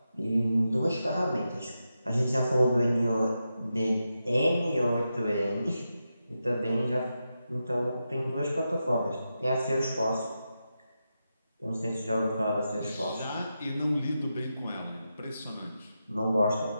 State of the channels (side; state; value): both; inverted; correlation -0.88